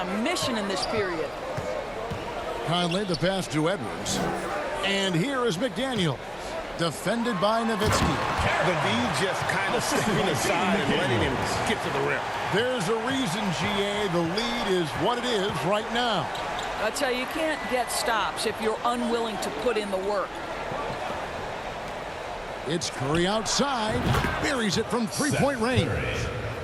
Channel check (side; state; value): both; identical; correlation 1.00